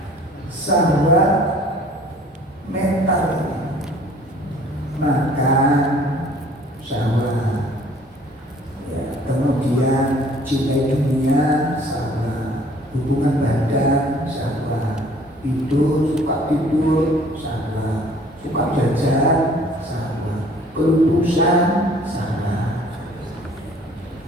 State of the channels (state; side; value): normal; both; correlation 0.54